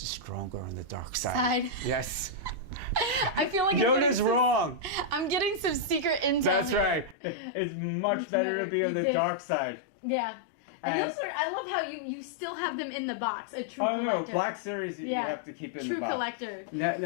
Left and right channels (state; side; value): drops out; right; at 7.2 s